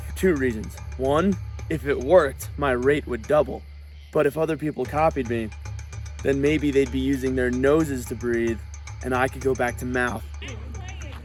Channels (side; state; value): both; identical; correlation 1.00